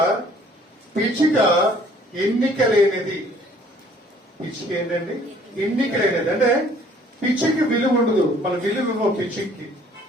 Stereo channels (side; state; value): both; normal; correlation 0.58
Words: పిచ్చుక ఎన్నిక లేనిది. పిచ్చుక ఏంటండి? ఎన్నిక లేనిది. అంటే పిచ్చుకి విలువ ఉండదు, మన విలువ ఇవ్వం పిచ్చుకి.